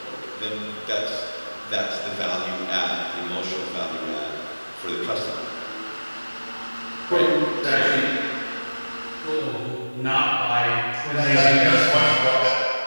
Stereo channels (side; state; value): both; inverted; correlation -1.00